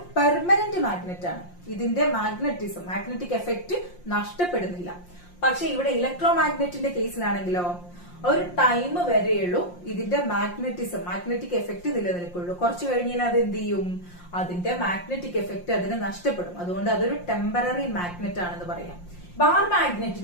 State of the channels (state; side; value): late; right; 5.7 ms